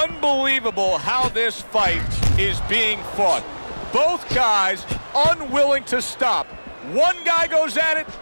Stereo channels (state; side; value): inverted; both; correlation -1.00